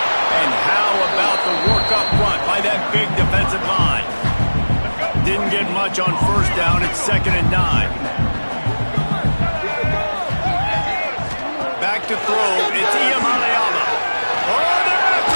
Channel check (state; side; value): inverted; both; correlation -1.00